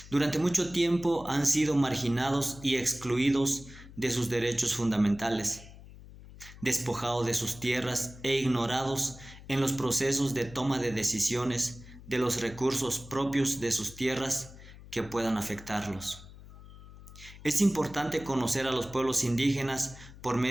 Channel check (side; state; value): left; noise; hum, 18 dB below the sound